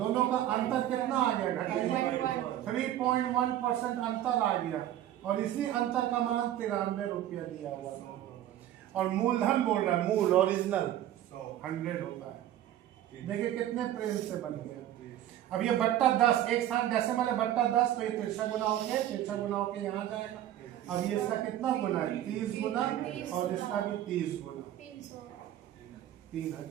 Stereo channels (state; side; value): quieter; left; 12.4 dB